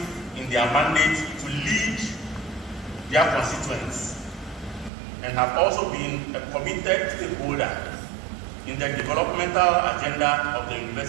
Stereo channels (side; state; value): left; drops out; at 4.9 s